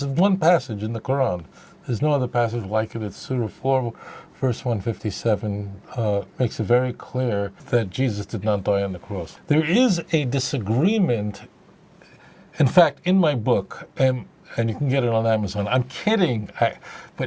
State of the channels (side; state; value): both; identical; correlation 1.00